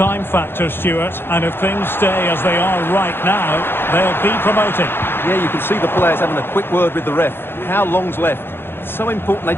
factor, Stuart, and if things stay as they are right now, they'll be promoted. Yeah, you can see the players having a quick word with the ref. How long's left? It's so important they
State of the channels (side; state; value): right; late; 0.11 ms